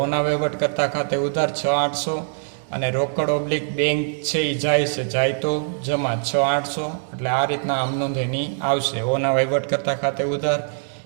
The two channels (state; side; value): silent; left; 64 dB below the other